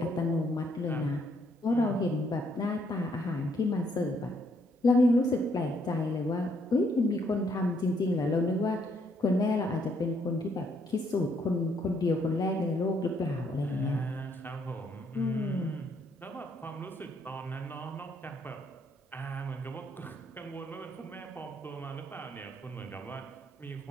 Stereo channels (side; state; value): both; normal; correlation 0.71